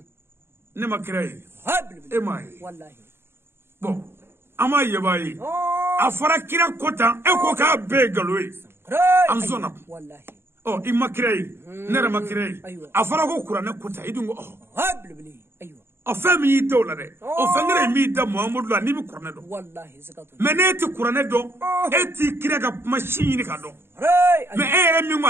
نما كراي إماي والله بو أما يباي أفرا كنا كوتا إكو كابي قلوي أنزونا والله oh imma kirei nere ma kirei afara ko kurane kuta idungo oh habli aywa afami yitola de o fangere mi da muhammadu la ni bi kurane do wallahi zakatu meneti kurane do eti kirega machine ka do me ere mi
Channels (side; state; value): left; late; 0.11 ms